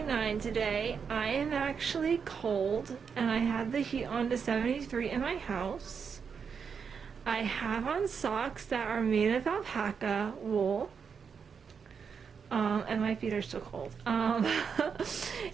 today. I am actually cold and I have the heat on to 73 in my house. I have on socks that are made of alpaca wool. And my feet are still cold.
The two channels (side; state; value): left; quieter; 6.3 dB